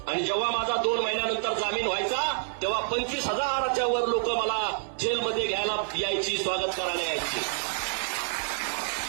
आणि जेव्हा माझा 2 महिन्यानंतर जामीन व्हायचा तेव्हा 25,000च्या वर लोक मला जेलमध्ये घ्यायला यायची, स्वागत करायला यायची.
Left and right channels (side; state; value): left; silent; 59 dB below the other